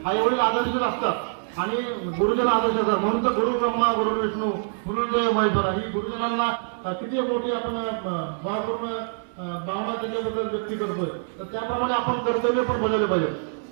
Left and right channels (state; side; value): silent; left; digital silence